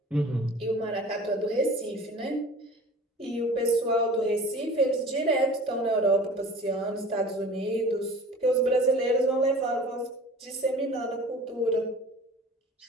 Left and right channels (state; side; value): normal; both; correlation 0.42